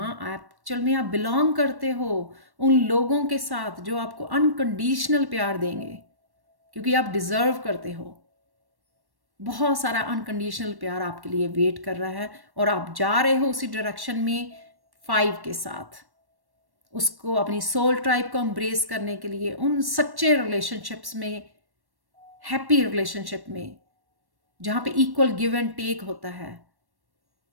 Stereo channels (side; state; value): left; late; 1.1 ms